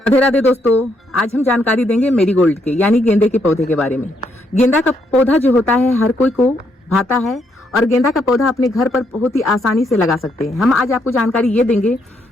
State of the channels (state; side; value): normal; both; correlation 0.75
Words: राधे राधे दोस्तों, आज हम जानकारी देंगे मेरीगोल्ड के यानी गेंदे के पौधे के बारे में। गेंदा का पौधा जो होता है हर कोई को भाता है और गेंदा का पौधा अपने घर पर बहुत ही आसानी से लगा सकते हैं। हम आज आपको जानकारी ये देंगे